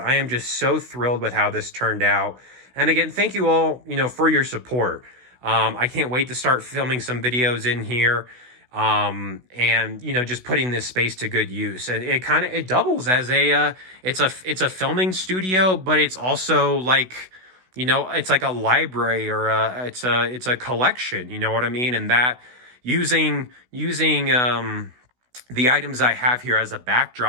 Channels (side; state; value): left; late; 16 ms